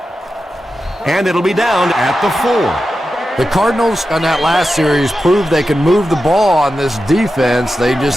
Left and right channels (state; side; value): normal; both; correlation 0.91